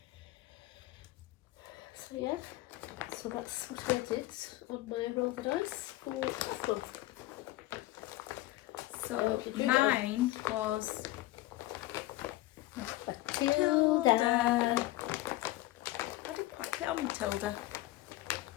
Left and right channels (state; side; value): quieter; right; 17.4 dB